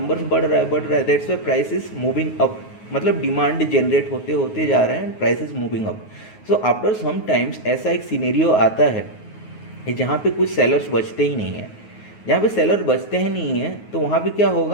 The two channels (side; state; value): right; late; 9.4 ms